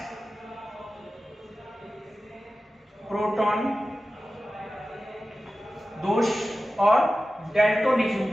प्रोटॉन दोष और डेल्टोनिज्म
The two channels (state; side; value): normal; both; correlation 0.95